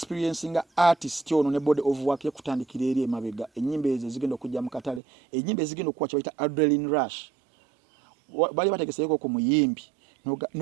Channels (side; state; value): left; drops out; at 5.0 s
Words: nga artist ono ne body of work yakutandikira eri emabega ennyimba ezo zigenda okujja mu katale ennyimba ezigenda okuwa kye bayita adrenaline rush bali bategeseeko ku muyimbi